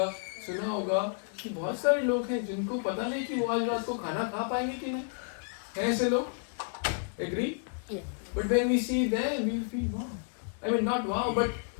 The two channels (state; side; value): silent; right; 56 dB below the other